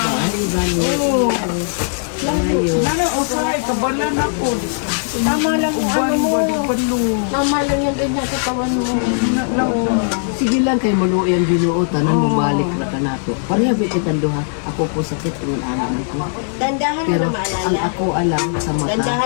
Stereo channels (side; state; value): right; silent; digital silence